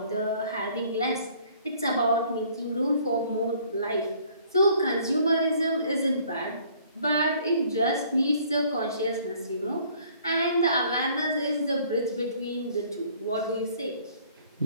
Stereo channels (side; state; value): both; inverted; correlation -0.58